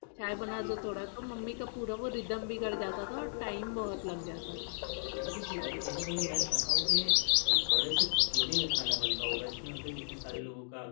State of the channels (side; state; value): right; silent; digital silence